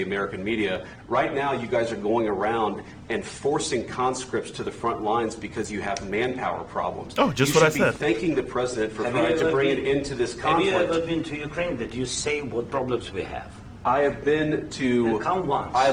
American media. Right now, you guys are going around and forcing conscripts to the front lines because you have manpower problems. Oh, just what I said. You should be thanking the president for trying to bring it into this conflict. Have you ever been to Ukraine that you say what problems we have? I have been to. Come once.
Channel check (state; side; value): identical; both; correlation 1.00